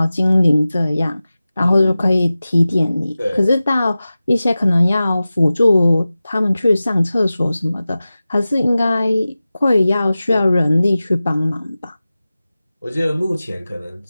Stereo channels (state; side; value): inverted; both; correlation -0.96